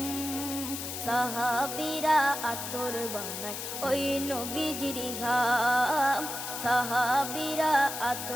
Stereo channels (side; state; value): left; noise; hiss, 6 dB below the sound